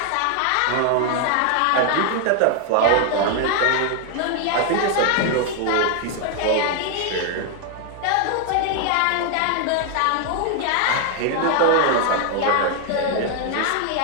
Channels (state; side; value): different; both; correlation 0.00